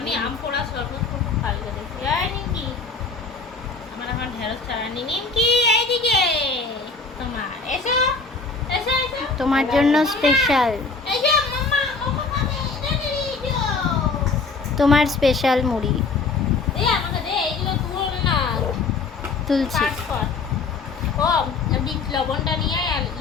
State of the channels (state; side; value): quieter; right; 4.2 dB